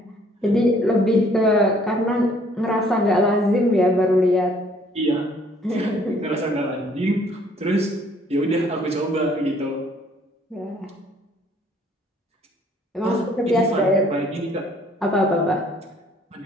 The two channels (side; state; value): both; normal; correlation 0.60